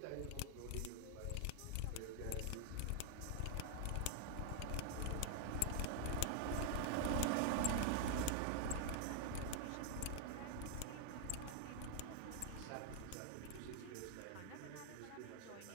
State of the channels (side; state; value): both; different; correlation 0.00